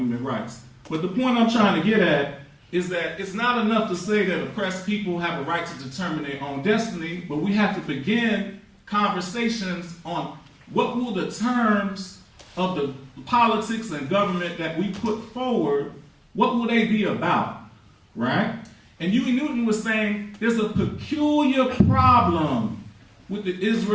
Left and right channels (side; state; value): both; identical; correlation 1.00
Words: rights. But the point I'm trying to get at is that it's not enough to say that oppressed people have a right to determine their own destiny, but we have to begin conversations on what will the terms of the politics and government that we put forward, what will they be about, right? And Huey Newton was saying there's a peculiar problem with the